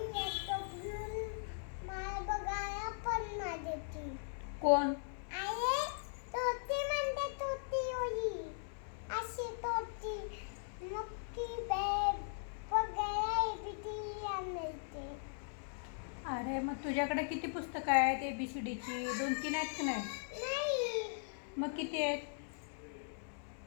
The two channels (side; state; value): right; silent; 52 dB below the other